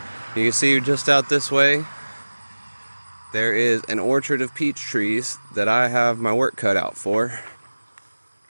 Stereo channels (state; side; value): inverted; both; correlation -1.00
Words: You can see just out this way there is an orchard of peach trees that I have my work cut out for.